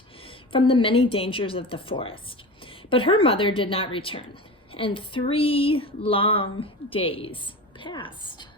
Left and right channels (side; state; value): both; normal; correlation 0.30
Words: from the many dangers of the forest. But her mother did not return, and 3 long days passed.